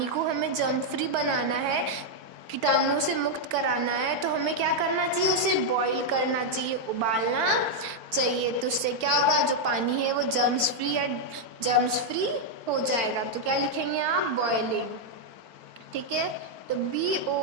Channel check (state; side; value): late; left; 4.8 ms